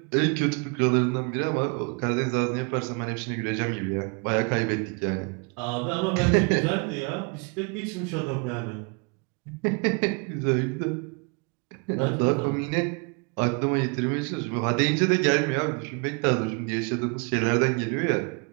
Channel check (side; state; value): left; quieter; 33.2 dB